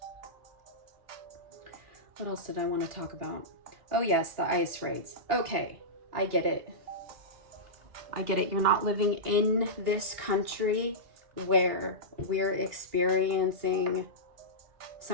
What else did I want to talk about? Oh yes, the ICE raids. Okay, I get it. I get it. You're not living in this country where we're experiencing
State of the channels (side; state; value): left; late; 2.8 ms